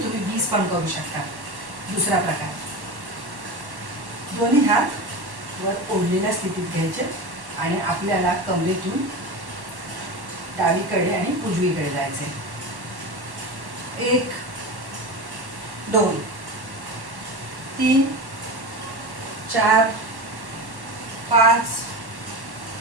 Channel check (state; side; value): late; left; 1.1 ms